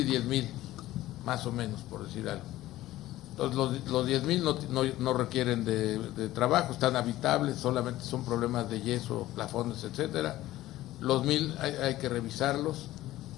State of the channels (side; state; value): right; quieter; 15.6 dB